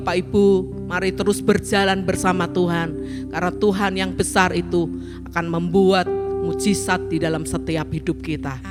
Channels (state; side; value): identical; both; correlation 1.00